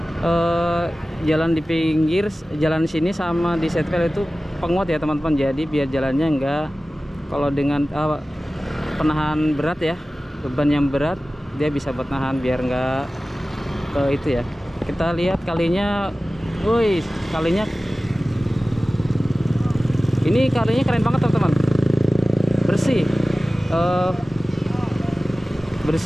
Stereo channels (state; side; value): normal; both; correlation 0.96